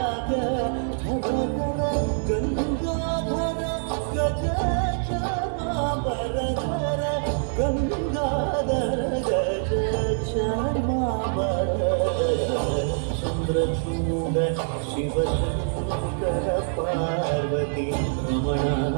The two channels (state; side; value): silent; left; 62 dB below the other